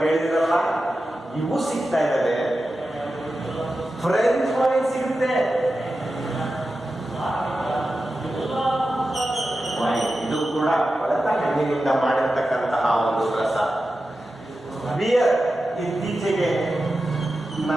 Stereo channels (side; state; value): both; normal; correlation 0.92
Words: ಕೇಳಿದಿರಲ್ಲ, ಇವು ಸಿಗ್ತಾ ಇದ್ದಾವೆ. ಫ್ರೆಂಚ್ ವೈನ್ ಸಿಗುತ್ತೆ. ಇದು ಕೂಡ ಕೊಳೆತ ಹಣ್ಣಿನಿಂದ ಮಾಡಿರ್ತಕ್ಕಂತಹ ಒಂದು ರಸ. ಬಿಯರ್ ಇತ್ತೀಚೆಗೆ